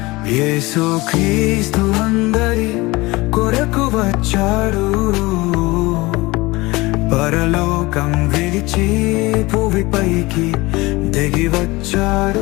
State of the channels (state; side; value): quieter; right; 21.9 dB